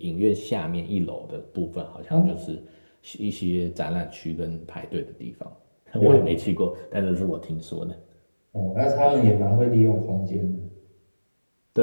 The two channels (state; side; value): inverted; both; correlation -1.00